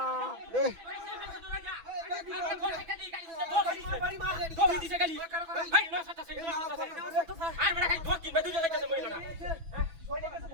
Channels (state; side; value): late; left; 6.0 ms